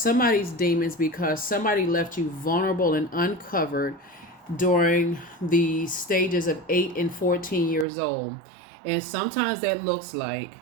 demons because somebody left you vulnerable and uncovered during the stages of 8 and 14 years old. And sometimes that looks like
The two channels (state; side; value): drops out; left; at 7.9 s